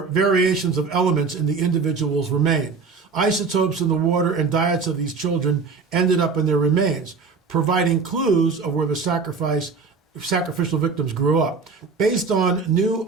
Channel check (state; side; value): quieter; left; 4.8 dB